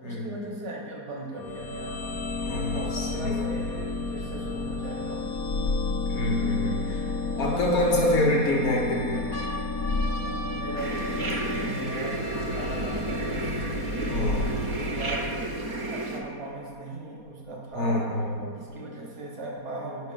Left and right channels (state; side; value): late; right; 4.2 ms